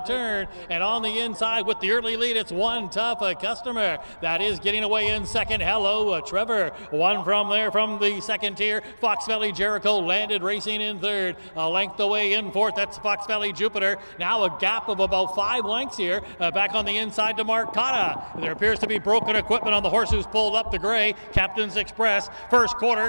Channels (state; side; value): inverted; both; correlation -1.00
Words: turn. And on the inside with the early lead, it's One Tough Customer. That is getting away in second. Hello Trevor. One from there from the second tier. Fox Valley Jericho landed racing in third. A length away in fourth. That's Fox Valley Jupiter. Now a gap of about 5 lengths here. Back on the inside to Mark Cotta. There appears to be broken equipment on the horse who's pulled up the gray. Captain's Express. First